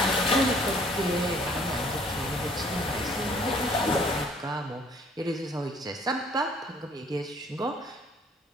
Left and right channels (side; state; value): both; normal; correlation 0.58